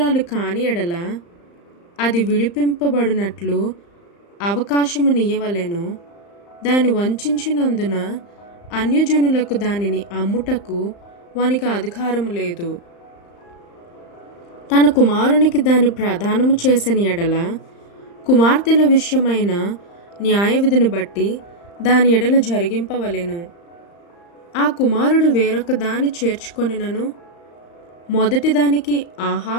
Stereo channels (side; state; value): right; late; 35 ms